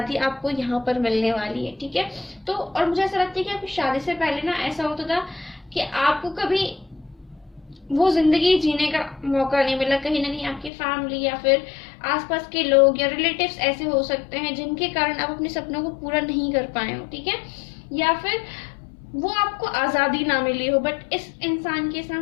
आपको यहाँ पर मिलने वाली है, ठीक है। तो और मुझे ऐसा लगता है कि आपकी शादी से पहले ना ऐसा होता था कि आपको कभी वो जिंदगी जीने का मौका नहीं मिला। कहीं ना कहीं आपकी फैमिली या फिर आसपास के लोग या रिलेटिव्स ऐसे हो सकते हैं जिनके कारण आप अपने सपनों को पूरा नहीं कर पाए हो, ठीक है, या फिर वो आपको आजादी ना मिली हो। बट इस इंसान के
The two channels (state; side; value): drops out; right; at 10.7 s